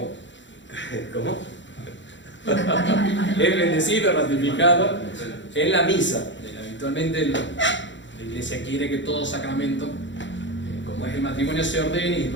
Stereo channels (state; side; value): late; right; 0.54 ms